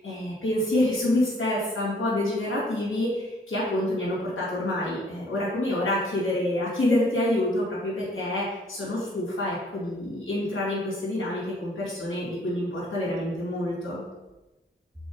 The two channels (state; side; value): normal; both; correlation 0.59